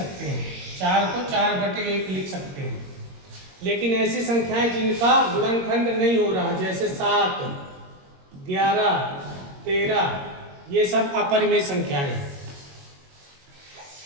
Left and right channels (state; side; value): late; left; 22 ms